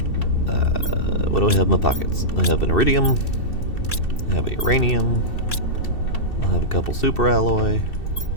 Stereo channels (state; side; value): late; right; 2.7 ms